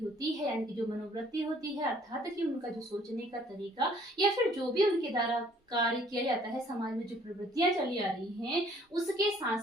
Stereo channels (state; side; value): normal; both; correlation 0.59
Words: है, यानी कि जो मनोवृत्ति होती है, अर्थात कि उनका जो सोचने का तरीका या फिर जो भी उनके द्वारा कार्य किया जाता है, समाज में जो प्रवृत्तियां चली आ रही हैं, उसके साथ